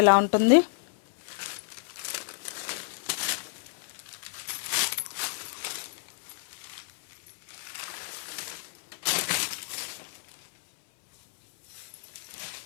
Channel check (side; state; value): right; silent; 58 dB below the other